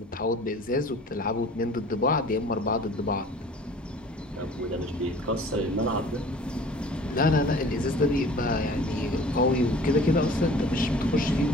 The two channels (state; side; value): normal; both; correlation 0.47